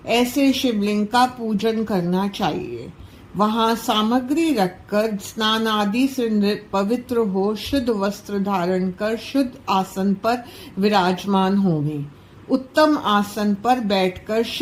ऐसे शिवलिंग का पूजन करना चाहिए। वहां सामग्री रखकर स्नान आदि से पवित्र हो, शुद्ध वस्त्र धारण कर शुद्ध आसन पर विराजमान होवें। उत्तम आसन पर बैठकर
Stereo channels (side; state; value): both; identical; correlation 1.00